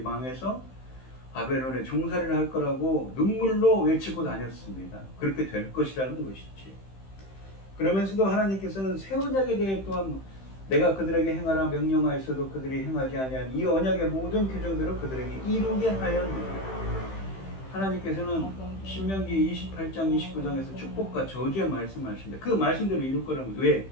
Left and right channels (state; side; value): late; right; 15 ms